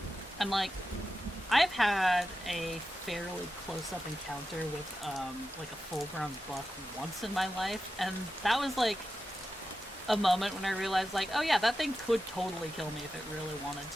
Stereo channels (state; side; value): normal; both; correlation 0.91